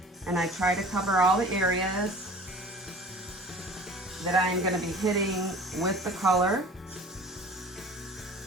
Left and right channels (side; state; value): both; normal; correlation 0.44